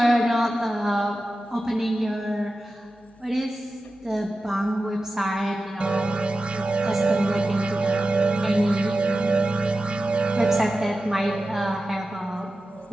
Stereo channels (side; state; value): both; normal; correlation 0.93